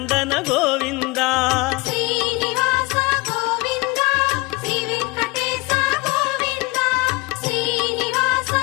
ಗೋವಿಂದ ಶ್ರೀನಿವಾಸ ಗೋವಿಂದ ಶ್ರೀ ವೆಂಕಟೇಶ ಗೋವಿಂದ ಶ್ರೀನಿವಾಸ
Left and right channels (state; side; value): quieter; right; 24.1 dB